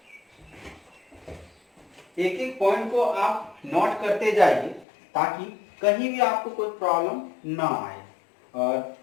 एक एक पॉइंट को आप नोट करते जाइए ताकि कहीं भी आपको कोई प्रॉब्लम ना आए। और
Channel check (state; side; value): drops out; right; at 4.9 s